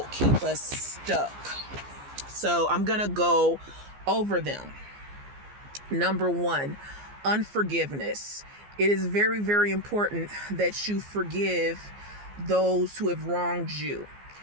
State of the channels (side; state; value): left; late; 15 ms